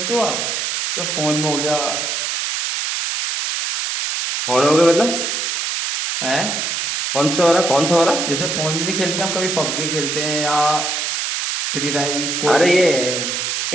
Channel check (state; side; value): noise; right; hiss, 1 dB below the sound